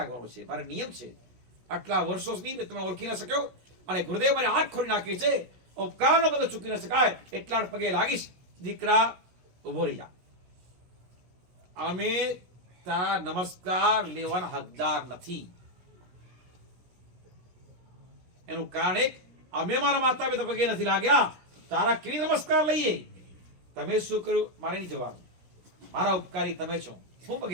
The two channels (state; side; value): late; left; 16 ms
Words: છે, મારે નિયમ છે. આટલા વર્ષો સુધી તમે ઓળખી ન શક્યો અને ગુરુદેવ મારી આંખ ખોલી નાખી છે, ઉપકારનો બધો ચૂકી ન શકાય, એટલા પગે લાગીશ. દીકરા ઉભો રહી જા, અમે તારા નમસ્કાર લેવાના હકદાર નથી. એનું કારણ એક, અમે મારા માતા પિતા પગે નથી લાગ્યા, તારા કેવી નમસ્કાર લઈએ? તમે શું કર્યું મારે નહીં જવાનું, મારા ઉપકારી તમે છો, હું